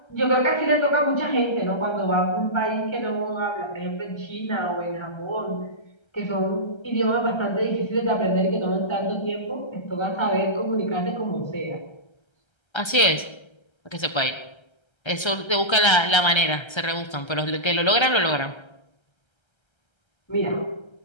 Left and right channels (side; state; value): right; late; 1.3 ms